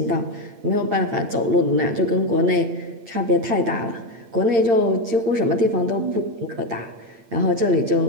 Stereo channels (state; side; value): late; left; 8.8 ms